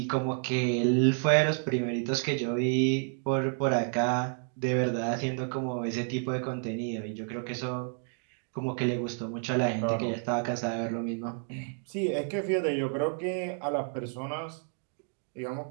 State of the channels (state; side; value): silent; left; 57 dB below the other